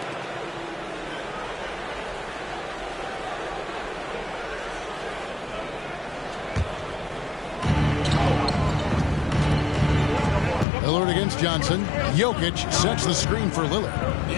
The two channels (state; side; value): drops out; right; at 10.7 s